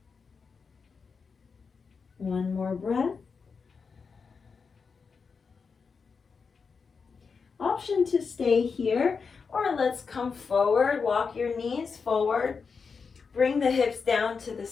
One more breath. Option to stay here, or let's come forward. Walk your knees forward. Bring the hips down to the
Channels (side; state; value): right; quieter; 5.3 dB